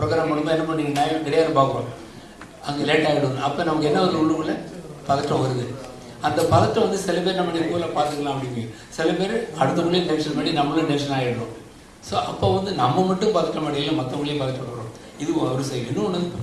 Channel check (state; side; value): identical; both; correlation 1.00